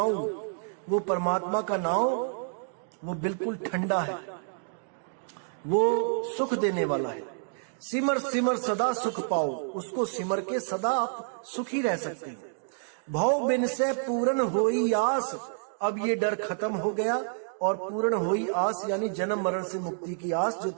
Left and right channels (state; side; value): silent; left; digital silence